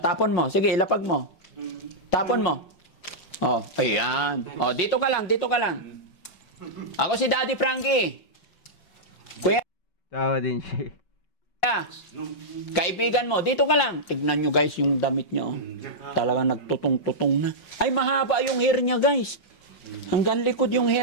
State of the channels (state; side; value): late; right; 5.7 ms